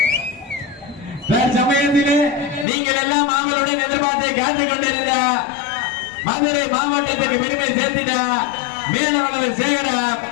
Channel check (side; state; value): right; drops out; at 2.7 s